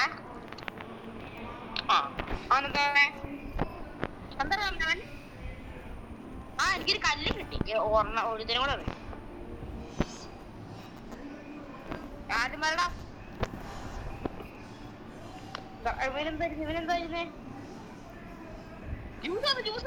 അവനെന്താ എന്താ അവൻ? എനിക്കൊരു കല്ല് കിട്ടി. ഒരുതിനും കൂടെ അറിയാം. ആദ്യം വരടാ. ഇവനെന്തായിരുന്നേ?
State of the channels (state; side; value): identical; both; correlation 1.00